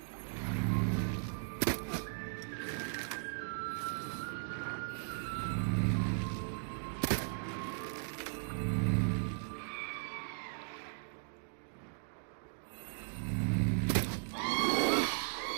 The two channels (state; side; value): silent; left; digital silence